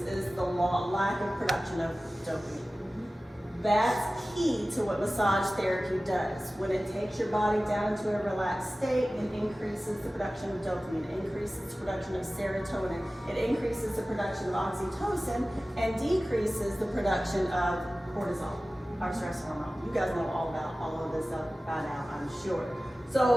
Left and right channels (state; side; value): normal; both; correlation 0.96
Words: is the lack of production of dopamine. That's key to what massage therapy does. When it takes your body down into a relaxed state, it increases the production of dopamine, it increases the production of serotonin, it increases the production of oxytocin, and decreases the production of cortisol, our stress hormone. You guys know all about all of this stuff by now, I'm sure.